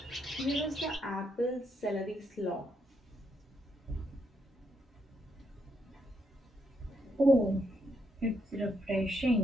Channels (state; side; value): normal; both; correlation 0.77